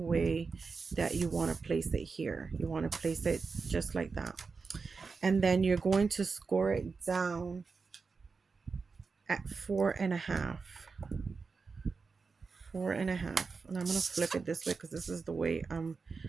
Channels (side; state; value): left; quieter; 4.7 dB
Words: that you want to place it here. You want to place it just like that. And then you're going to score it down at 4.5. 4.5. And I'm going to flip it this way because this is the way I